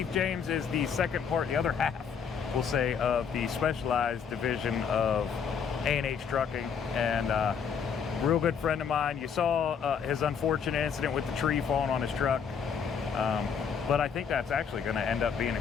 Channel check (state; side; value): quieter; right; 6.8 dB